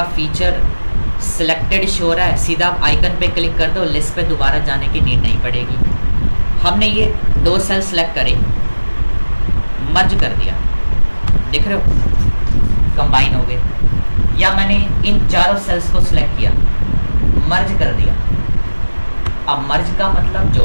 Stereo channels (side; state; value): both; inverted; correlation -1.00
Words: फीचर सिलेक्टेड शो रहा है। सीधा आप आइकन पे क्लिक कर दो, लिस्ट पे दोबारा जाने की नीड नहीं पड़ेगी। हमने ये 2 सेल सेलेक्ट करे, मर्ज कर दिया, देख रहे हो कंबाइन हो गए। या मैंने इन चारों सेल्स को सिलेक्ट किया, मर्ज कर दिया। अब मर्ज का मतलब